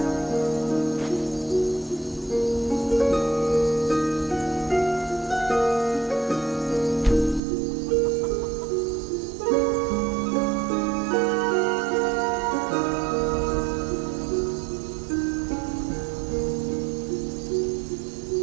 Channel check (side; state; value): left; drops out; at 7.4 s